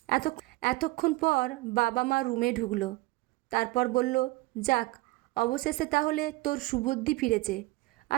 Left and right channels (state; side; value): quieter; left; 21.5 dB